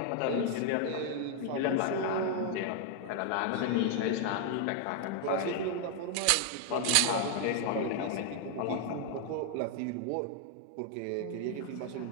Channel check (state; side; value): different; both; correlation 0.00